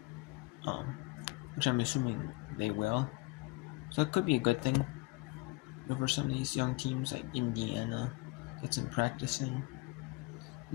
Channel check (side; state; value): right; quieter; 23.2 dB